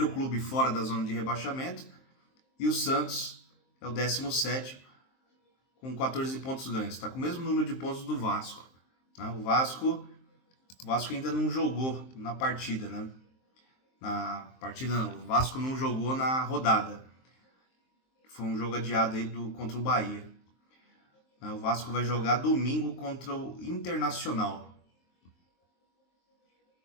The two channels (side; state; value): right; late; 23 ms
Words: clube fora da zona de rebaixamento, e o Santos é o 17º, com 14 pontos ganhos. Está com o mesmo número de pontos do Vasco. Né? O Vasco ainda não jogou na partida, né? O Vasco não jogou na rodada. Foi um jogo adiado aí contra o Bahia. O Vasco vai jogar domingo contra o Internacional,